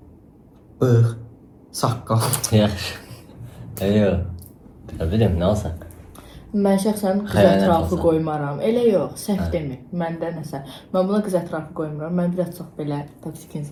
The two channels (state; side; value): identical; both; correlation 1.00